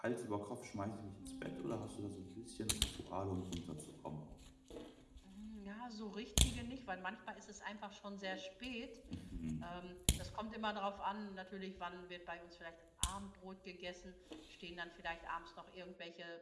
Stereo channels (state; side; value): identical; both; correlation 1.00